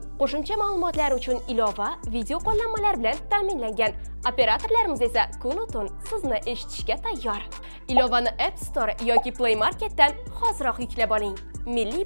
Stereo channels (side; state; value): both; inverted; correlation -1.00